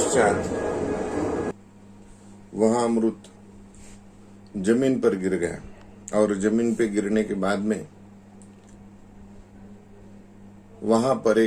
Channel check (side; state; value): both; identical; correlation 1.00